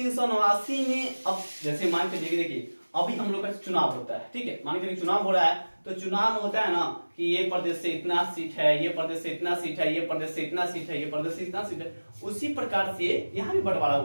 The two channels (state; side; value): inverted; both; correlation -1.00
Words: में अब जैसे मान के देखिए अभी हम लोग का चुनाव होता है। ठीक है, मान के चुनाव हो रहा है, तो चुनाव में होता है ना कि ये प्रदेश से इतना सीट है, ये प्रदेश से इतना सीट है, ये प्रदेश से इतना सीट है, ये प्रदेश से इतना सीट है। उसी प्रकार से यहाँ भी बंटवारा